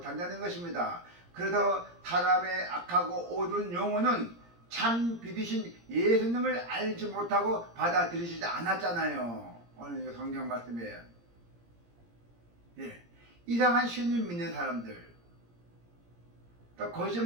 것입니다. 그래서 사람의 악하고 어두운 영혼은 참 빛이신 예수님을 알지 못하고 받아들이지 않았잖아요. 오늘 성경 말씀이에요. 예. 이상한 신을 믿는 사람들, 또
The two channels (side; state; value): left; late; 17 ms